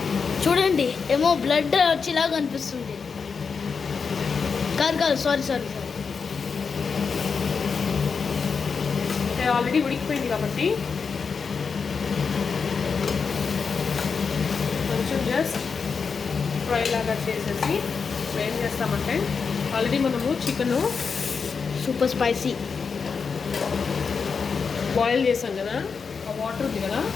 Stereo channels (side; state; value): right; quieter; 5.5 dB